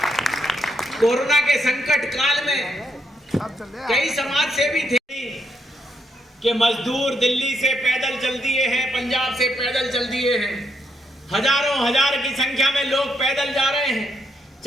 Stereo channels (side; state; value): both; normal; correlation 0.78